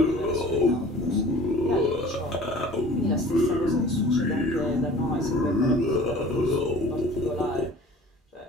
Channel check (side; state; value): both; normal; correlation 0.46